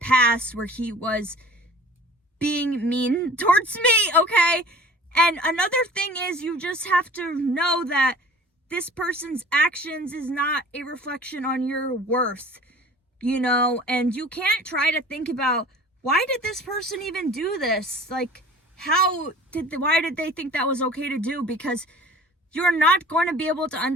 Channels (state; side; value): normal; both; correlation 0.46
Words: where he was being mean towards me, okay? And another thing is, you just have to know that this person's actions is not a reflection on your worth, and you can't try to think about, why did this person even do this? Like, why did they think that was okay to do? Because you're not going to be able to